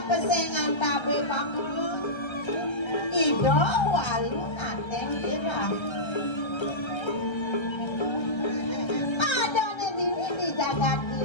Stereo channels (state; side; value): late; right; 1.3 ms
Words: tabe pakulun ido walu nateng irah adone dini di jagat